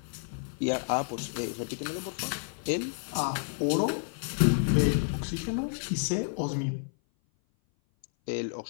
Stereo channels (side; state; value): right; silent; 57 dB below the other